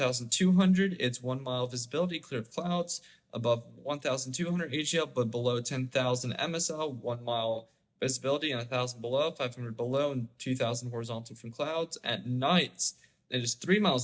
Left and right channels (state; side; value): identical; both; correlation 1.00